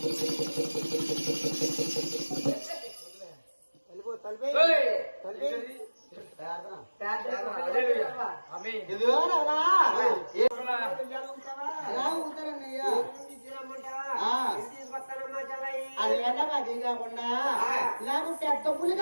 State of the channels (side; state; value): both; inverted; correlation -1.00